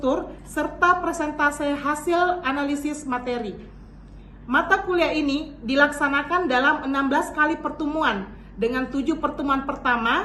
serta presentasi hasil analisis materi. Mata kuliah ini dilaksanakan dalam 16 kali pertemuan dengan 7 pertemuan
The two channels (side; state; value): both; identical; correlation 1.00